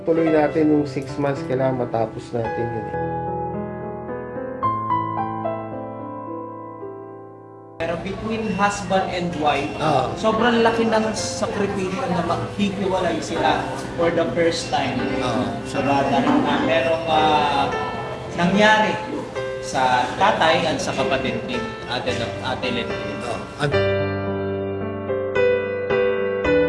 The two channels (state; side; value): identical; both; correlation 1.00